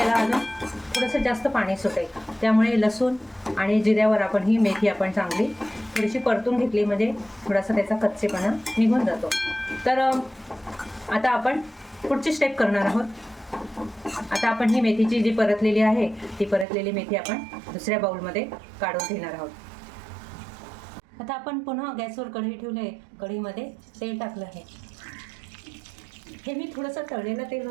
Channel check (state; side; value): drops out; left; at 16.7 s